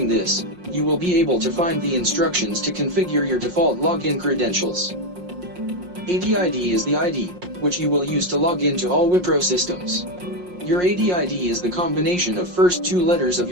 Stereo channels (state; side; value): late; left; 5.6 ms